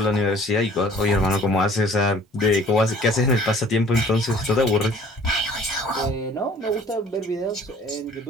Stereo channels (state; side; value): normal; both; correlation 0.53